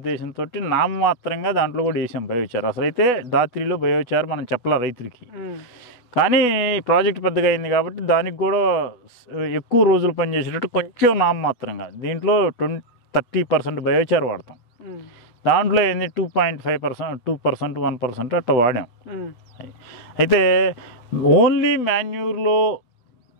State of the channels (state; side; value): late; right; 8.2 ms